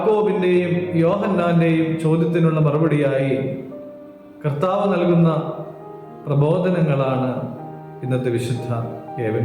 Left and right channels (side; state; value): both; identical; correlation 1.00